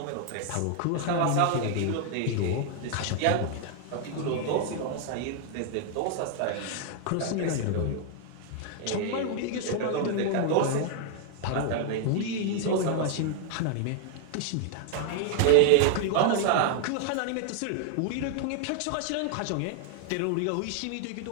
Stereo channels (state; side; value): different; both; correlation 0.00